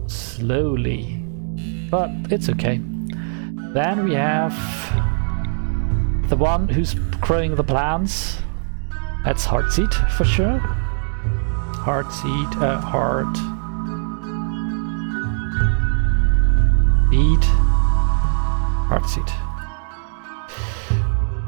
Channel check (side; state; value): left; silent; digital silence